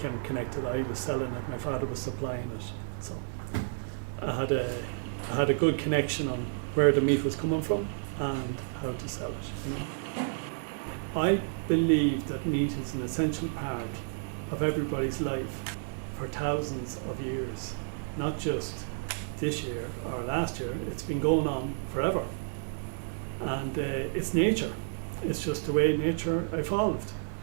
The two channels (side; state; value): left; silent; digital silence